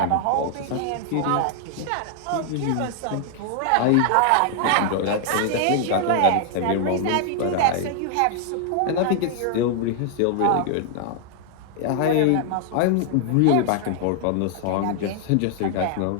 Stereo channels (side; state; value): both; different; correlation 0.00